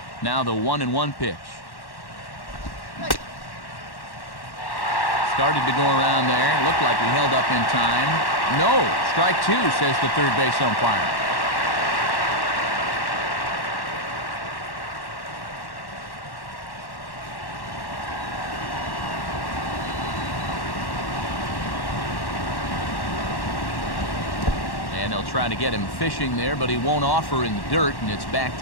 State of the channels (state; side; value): late; right; 1.1 ms